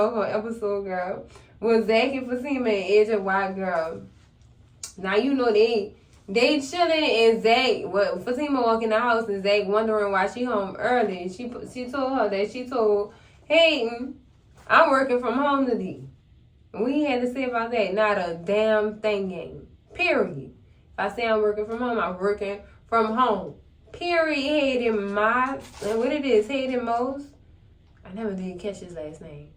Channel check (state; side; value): identical; both; correlation 1.00